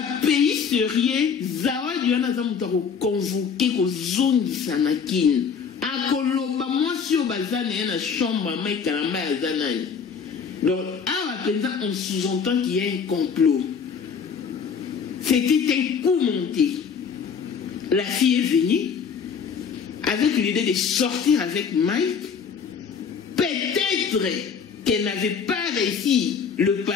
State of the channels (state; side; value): quieter; right; 6.4 dB